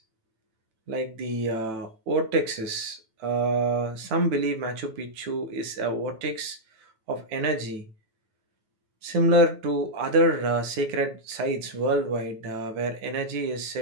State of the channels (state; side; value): late; left; 9.1 ms